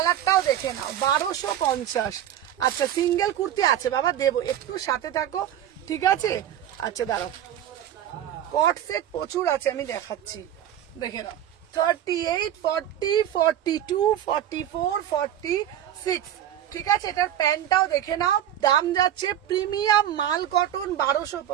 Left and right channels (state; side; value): quieter; left; 11.0 dB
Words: দেখে নাও, 1250। আচ্ছা, সিঙ্গেল কুর্তি আছে বাবা, দেবো, একটু সাথে থাকো, ঠিক আছে? আচ্ছা দাঁড়াও, কট সেট প্রচুর আছে, আমি দেখাচ্ছি, দেখে নাও। 38, 40, 42, 44, 46 ঠিক আছে? এটার প্যান্টটাও দেখে নাও। দাম যাচ্ছে প্রিমিয়াম মাল কটন,